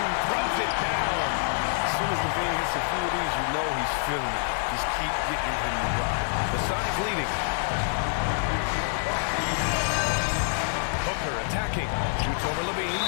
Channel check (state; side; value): silent; right; digital silence